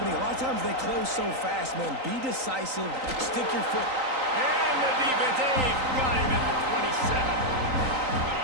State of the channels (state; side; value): late; left; 3.9 ms